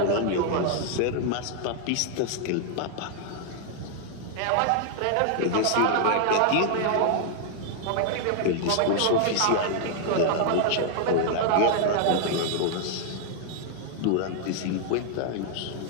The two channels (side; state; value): both; different; correlation 0.00